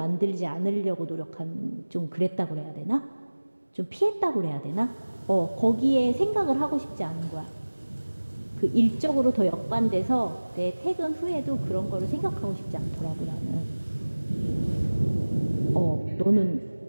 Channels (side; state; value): both; inverted; correlation -1.00